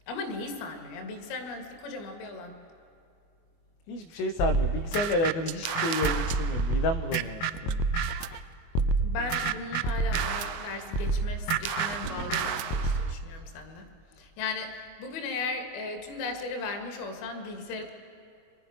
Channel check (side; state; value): right; late; 24 ms